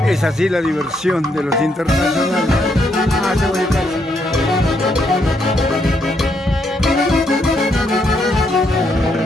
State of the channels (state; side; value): normal; both; correlation 0.75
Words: Es así la diversión de los internacionales.